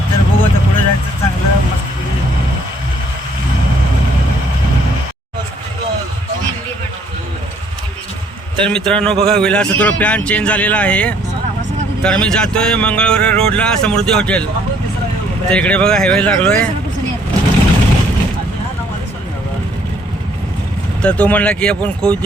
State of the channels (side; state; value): both; normal; correlation 0.63